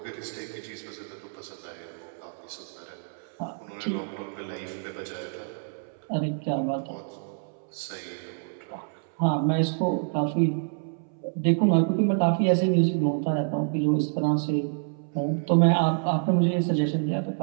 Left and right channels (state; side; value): silent; left; 60 dB below the other